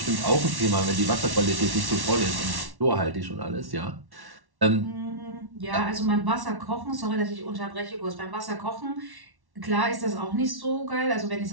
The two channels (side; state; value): left; late; 1.1 ms